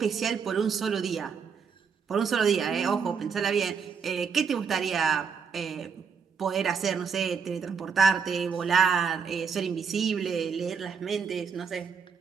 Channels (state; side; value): quieter; left; 6.2 dB